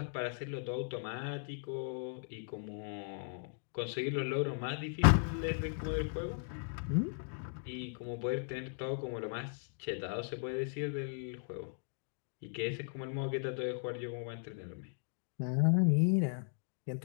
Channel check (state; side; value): silent; right; digital silence